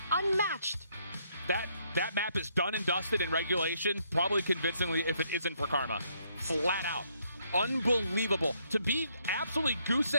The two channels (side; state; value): both; inverted; correlation -0.71